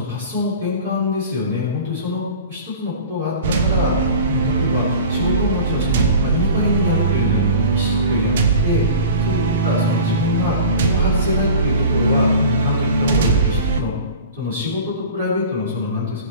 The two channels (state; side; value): inverted; both; correlation -0.39